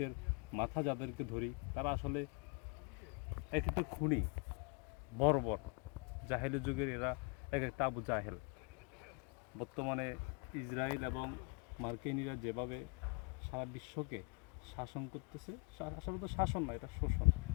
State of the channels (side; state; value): right; quieter; 33.6 dB